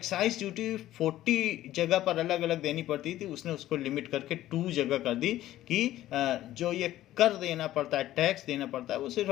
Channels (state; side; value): quieter; right; 14.2 dB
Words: ड्यूटी 40 जगह पर अलग अलग देनी पड़ती थी, उसने उसको लिमिट करके 2 जगह कर दी, कि जो ये कर देना पड़ता है, टैक्स देना पड़ता है, वो सिर्फ